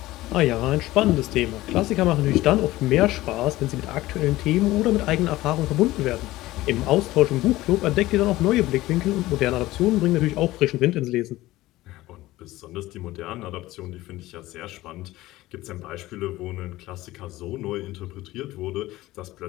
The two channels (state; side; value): quieter; right; 17.3 dB